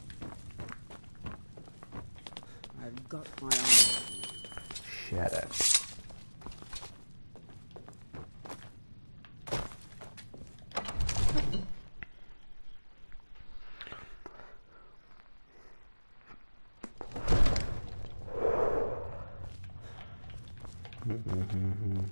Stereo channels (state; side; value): inverted; both; correlation -1.00